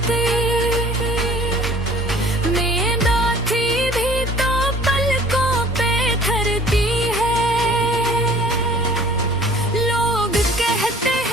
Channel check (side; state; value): both; normal; correlation 0.50